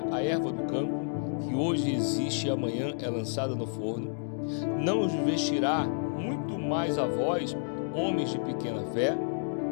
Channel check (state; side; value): silent; right; digital silence